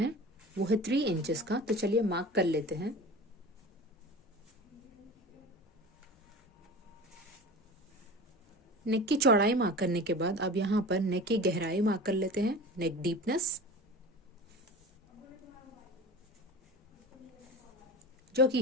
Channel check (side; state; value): both; normal; correlation 0.35